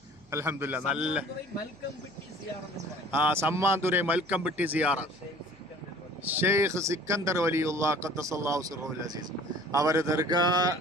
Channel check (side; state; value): right; noise; hum, 28 dB below the sound